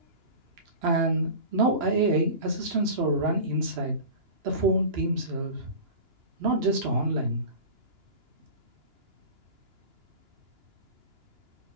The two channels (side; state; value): left; late; 2.9 ms